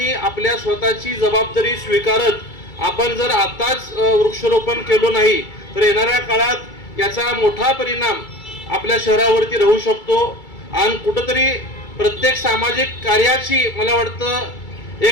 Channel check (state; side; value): late; right; 2.3 ms